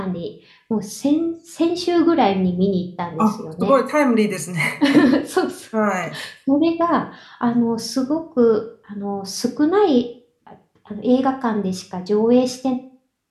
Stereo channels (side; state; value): both; identical; correlation 1.00